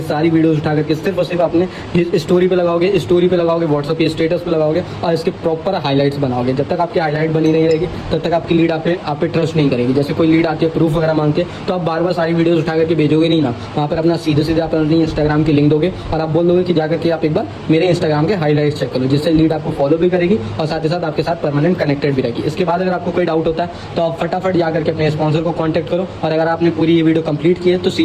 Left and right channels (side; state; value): both; identical; correlation 1.00